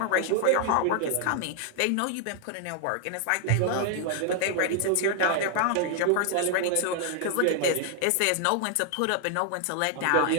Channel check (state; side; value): different; both; correlation 0.00